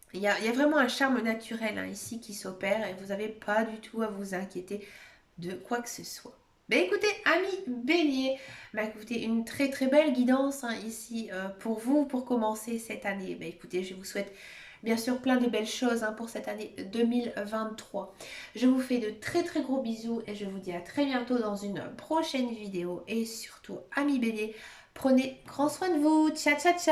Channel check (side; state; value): both; identical; correlation 1.00